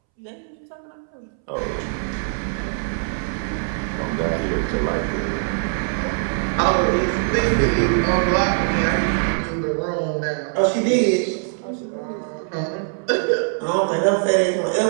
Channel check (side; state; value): left; silent; 64 dB below the other